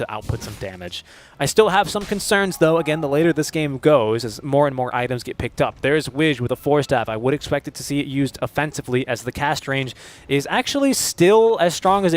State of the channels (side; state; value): both; identical; correlation 1.00